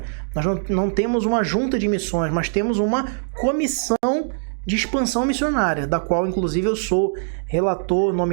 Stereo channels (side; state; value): left; silent; digital silence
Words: nós não temos uma junta de missões, mas temos uma comissão de expansão missionária, da qual, inclusive, eu sou relator